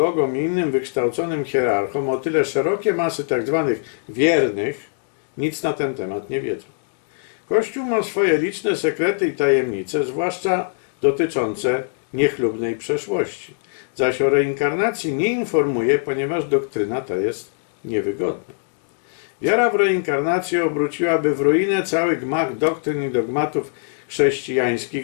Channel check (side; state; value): right; silent; digital silence